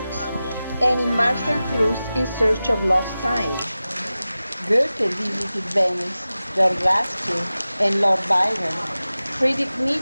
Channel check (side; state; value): both; inverted; correlation -0.95